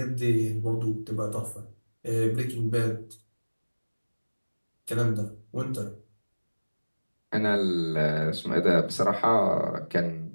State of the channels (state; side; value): inverted; both; correlation -1.00